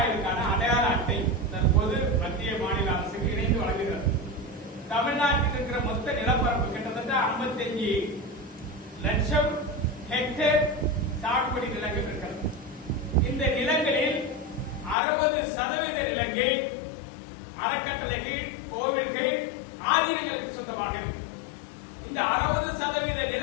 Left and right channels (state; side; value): drops out; right; at 15.0 s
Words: அடையாள அட்டை தற்போது மத்திய மாநில அரசுக்கு இணைந்து வழங்குகிறது. தமிழ்நாட்டில் இருக்கிற மொத்த நிலப்பரப்பு கிட்டத்தட்ட 55 லட்சம் ஹெக்டேர் சாகுபடி நிலங்கள் இருக்கிறது. இந்த நிலங்களில் 60% நிலங்கள் அறக்கட்டளைகள், கோவில்கள், ஆதீனங்களுக்கு சொந்தமாக இருக்கு. இந்த 60%